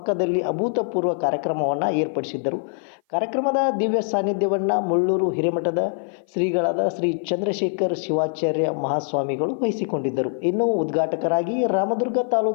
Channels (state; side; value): silent; right; 56 dB below the other